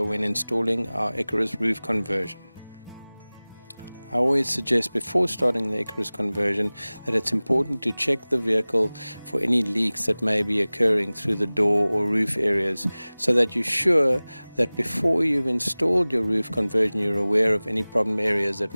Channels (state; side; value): inverted; both; correlation -0.99